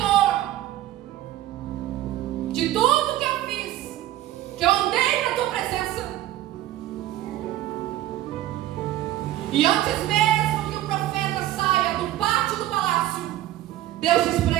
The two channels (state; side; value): quieter; left; 14.2 dB